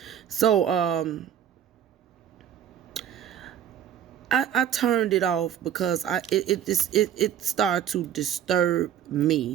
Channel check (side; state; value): left; quieter; 9.8 dB